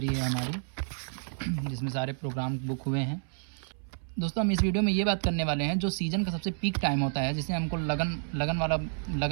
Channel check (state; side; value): silent; left; 58 dB below the other